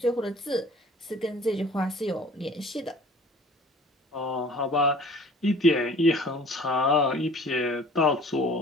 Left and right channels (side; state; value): both; normal; correlation 0.48